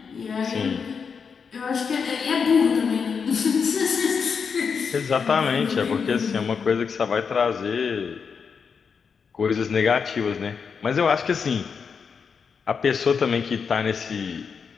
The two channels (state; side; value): quieter; right; 6.0 dB